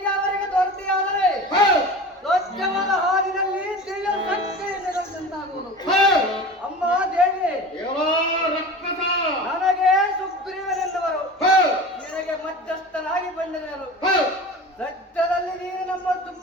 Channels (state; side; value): normal; both; correlation 0.34